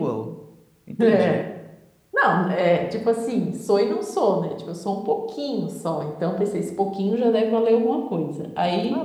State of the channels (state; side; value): identical; both; correlation 1.00